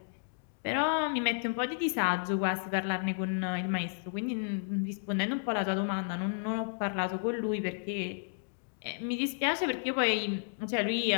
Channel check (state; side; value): silent; right; digital silence